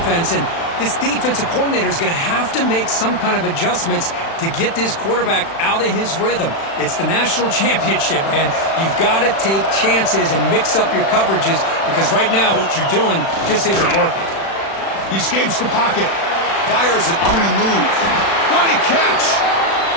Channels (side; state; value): right; late; 36 ms